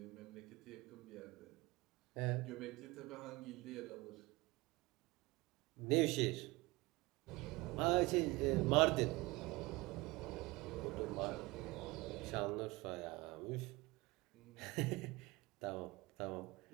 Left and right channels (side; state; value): left; quieter; 22.4 dB